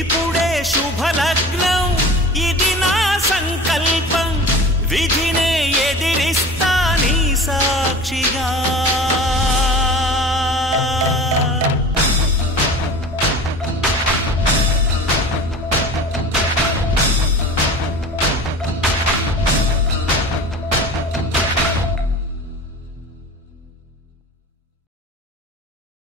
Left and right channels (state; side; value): normal; both; correlation 0.38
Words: శుభలగ్నం ఇది నా సంకల్పం విధినే ఎదిరిస్తా నీ సాక్షిగా